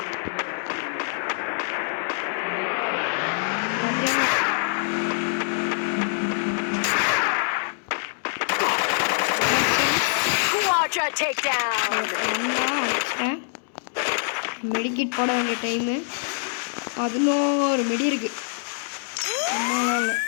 மெடிக்கிட் போட வேண்டிய டைமு 11 மெடி இருக்கு. அம்மாவால்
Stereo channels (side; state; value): right; silent; digital silence